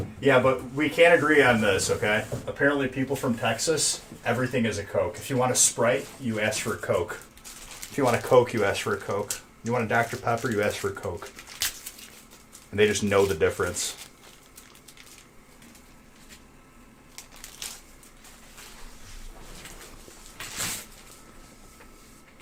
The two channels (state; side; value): identical; both; correlation 1.00